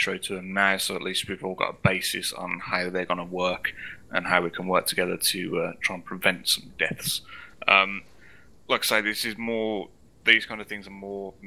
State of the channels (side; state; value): both; identical; correlation 1.00